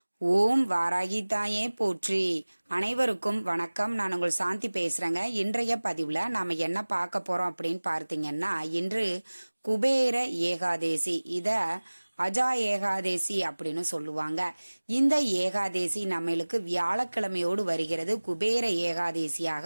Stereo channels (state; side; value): inverted; both; correlation -1.00